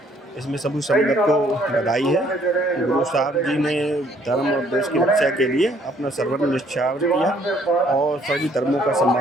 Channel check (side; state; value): both; normal; correlation 0.64